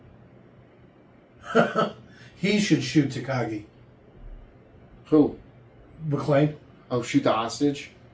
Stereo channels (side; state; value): both; identical; correlation 1.00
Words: He should shoot Takagi. Who? McLean. Oh, shoot the hostage?